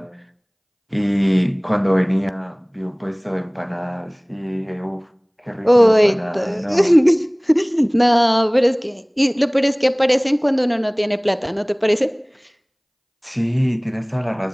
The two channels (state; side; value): identical; both; correlation 1.00